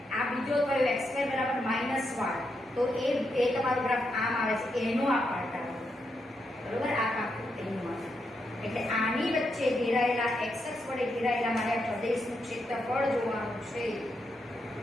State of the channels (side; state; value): both; normal; correlation 0.82